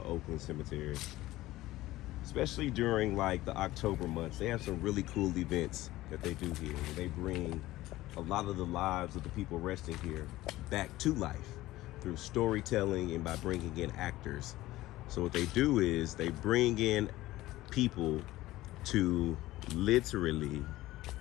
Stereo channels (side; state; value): right; quieter; 16.9 dB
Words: Oakland Cemetery. Especially during like the October months. They have some really cool events that they do here. They bring a lot of the lives of the people resting here back to life through storytelling and by bringing in actors. So what they do is they bring in people to literally